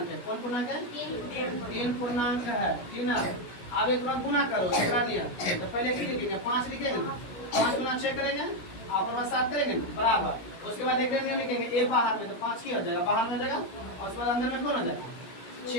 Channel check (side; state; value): right; late; 17 ms